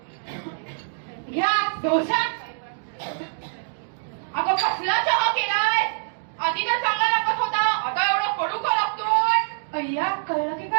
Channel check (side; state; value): left; silent; digital silence